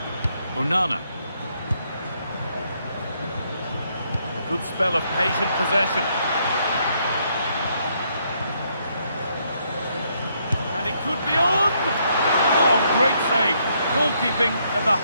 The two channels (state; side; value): inverted; both; correlation -0.73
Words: Onana. A good spell of patient possession. And it could be on! Oh, great save. Goalkeeping of the